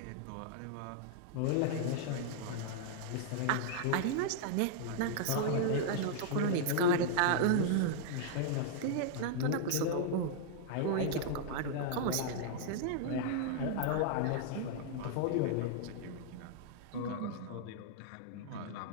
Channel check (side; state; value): both; different; correlation -0.01